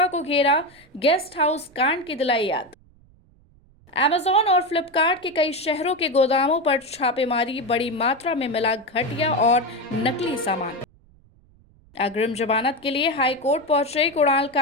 को घेरा, गेस्ट हाउस कांड की दिलाई याद। अमेजॉन और फ्लिपकार्ट के कई शहरों के गोदामों पर छापेमारी, बड़ी मात्रा में मिला घटिया और नकली सामान। अग्रिम जमानत के लिए हाई कोर्ट पहुंचे कुणाल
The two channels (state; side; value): noise; right; rumble, 29 dB below the sound